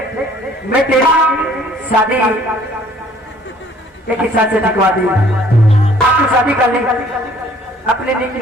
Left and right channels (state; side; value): normal; both; correlation 0.57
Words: मैं तेरी शादी एक हिसाब से दिखवा दी। आपकी शादी कर ले, अपनी निजी